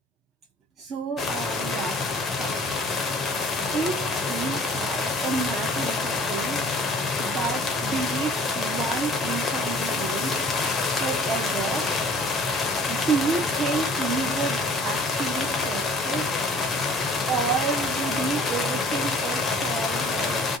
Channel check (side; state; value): both; normal; correlation 0.51